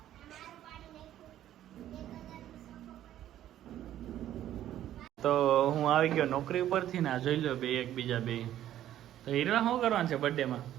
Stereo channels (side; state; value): left; quieter; 12.2 dB